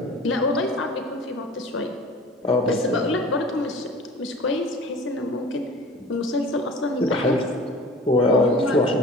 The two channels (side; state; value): both; normal; correlation 0.42